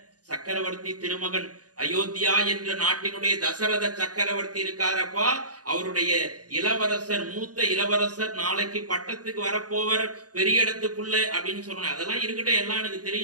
சக்கரவர்த்தி திருமகன், அயோத்தியா என்ற நாட்டினுடைய தசரத சக்கரவர்த்தி இருக்காரப்பா, அவருடைய இளவரசர், மூத்த இளவரசர், நாளைக்கு பட்டத்துக்கு வரப்போவர், பெரிய இடத்துக்குள்ள அப்படின்னு சொன்ன. அதெல்லாம் இருக்கட்டும், எல்லாம் எனக்கு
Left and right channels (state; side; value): late; left; 0.68 ms